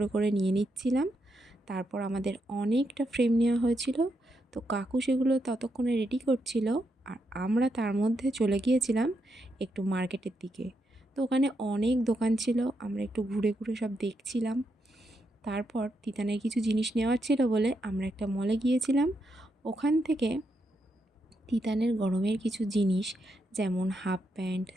করে নিয়ে নিচ্ছিলাম। তারপর আমাদের অনেকটা ফ্রেম নেওয়া হয়েছিল। তো কাকু সেগুলো ততক্ষণে রেডি করছিল, আর আমরা তার মধ্যে চলে গিয়েছিলাম একটু মার্কেটের দিকে। তো ওখানে অনেক দোকান ছিল, আমরা একটু ঘুরে ঘুরে সব দেখছিলাম। তারপর তিতানের কিছু জিনিস নেওয়ার ছিল বলে আমরা একটা মলে গিয়েছিলাম। ওখান থেকে তিতানের গরমের কিছু জিনিস, যেমন হাফ প্যান্ট,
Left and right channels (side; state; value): both; normal; correlation 0.82